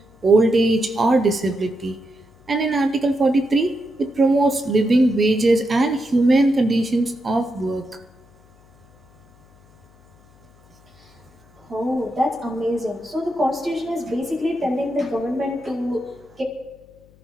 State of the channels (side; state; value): left; noise; hum, 29 dB below the sound